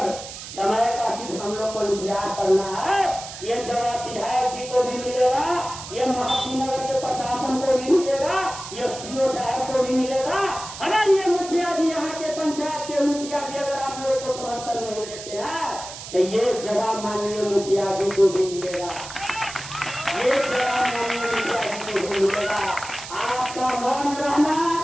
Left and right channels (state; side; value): noise; right; hiss, 11 dB below the sound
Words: समय का सिर्फ हम लोग को इंतजार करना है। ये जवाब विधायक जी को भी मिलेगा, ये महानगर के प्रशासन को भी मिलेगा, ये सीओ साहब को भी मिलेगा। अगर ये मुखिया जी, यहाँ के पंचायत के मुखिया जी अगर आप लोग को समर्थन नहीं देते हैं तो ये जवाब माननीय मुखिया जी को भी मिलेगा, ये जवाब माननीय मुखिया जी को भी मिलेगा।